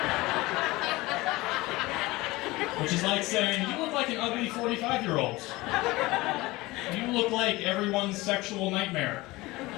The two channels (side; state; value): right; quieter; 20.7 dB